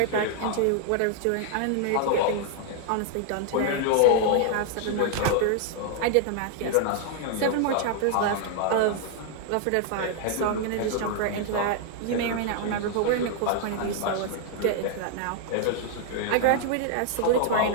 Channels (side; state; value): both; different; correlation 0.00